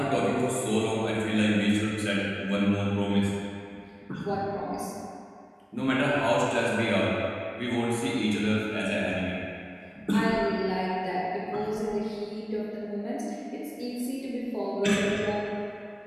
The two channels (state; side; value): identical; both; correlation 1.00